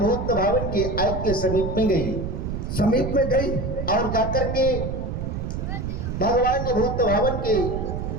भावन के आयत के समीप में गई समीप में गई और जाकर के भगवान ने भूत भावन के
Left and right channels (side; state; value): right; noise; rumble, 4 dB below the sound